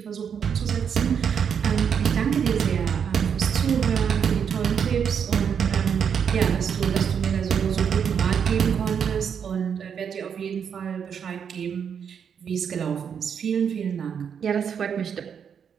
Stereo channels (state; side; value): quieter; left; 7.4 dB